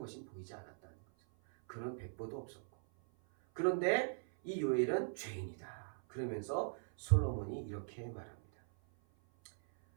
보이지 않았다는 거죠. 그런 백보도 없었고. 그런데 이 요엘은 죄인이다. 그러면서 솔로몬이 이렇게 말합니다.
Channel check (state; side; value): silent; left; 51 dB below the other